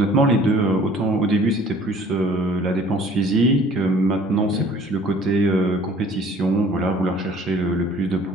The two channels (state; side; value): normal; both; correlation 0.52